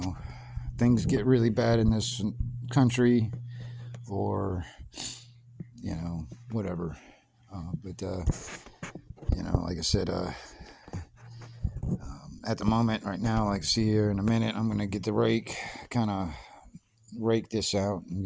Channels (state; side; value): identical; both; correlation 1.00